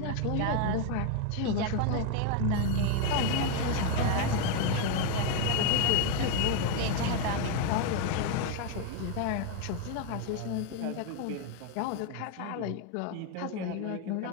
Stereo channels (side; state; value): both; different; correlation 0.01